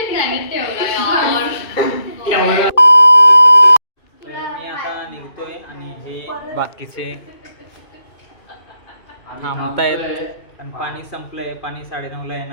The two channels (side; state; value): right; late; 2.5 ms